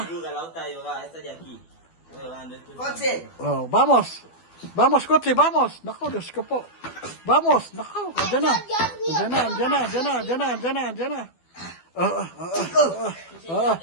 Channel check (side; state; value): right; late; 12 ms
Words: ¡Coche! Oh, vamos. Vamos, coche, vamos. Nako, Diyos ko po. Vamos, nako. Andiyan na.